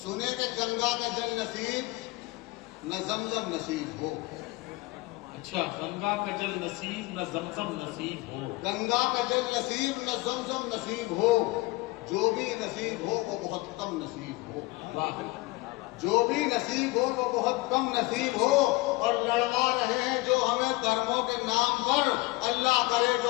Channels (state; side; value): quieter; right; 21.7 dB